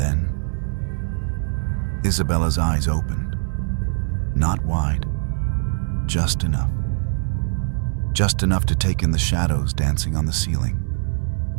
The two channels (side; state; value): left; silent; 64 dB below the other